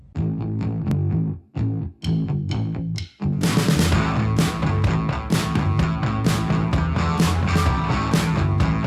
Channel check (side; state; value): both; identical; correlation 1.00